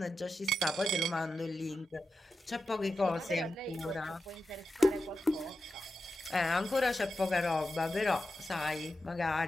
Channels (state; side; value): normal; both; correlation 0.90